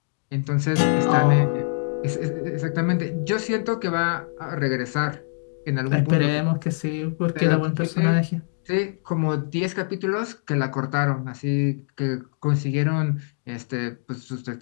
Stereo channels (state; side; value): silent; right; 62 dB below the other